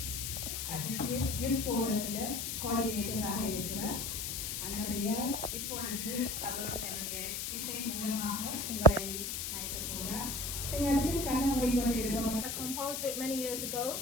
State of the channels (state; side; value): noise; left; hiss, 3 dB below the sound